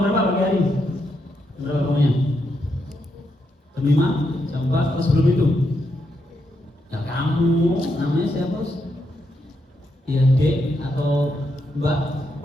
jam berapa pagi hari? Jam berapa bangunnya? Jam 5, jam 4, atau sebelum itu? Ya kamu, namanya siapa? Ya Dek atau Mbak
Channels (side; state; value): both; normal; correlation 0.81